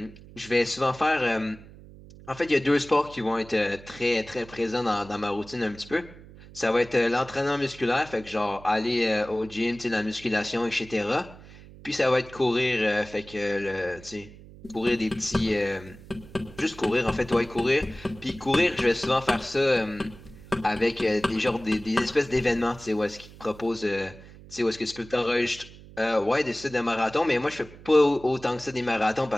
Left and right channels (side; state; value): right; noise; hum, 19 dB below the sound